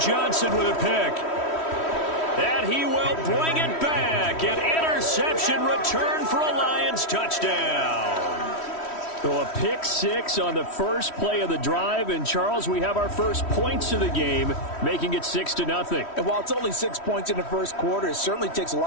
with a pick. And he will bring it back. An interception return for a Lions touchdown. So a pick 6 on the first play of the drive. And, Charles, we have our first points of the game, making it 6-0. And while it's only 6 points in the first quarter, it certainly takes a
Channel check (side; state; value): right; late; 3.1 ms